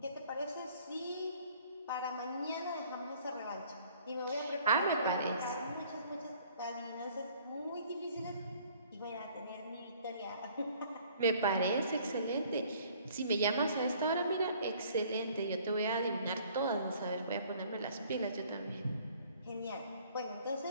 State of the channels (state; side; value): inverted; both; correlation -0.57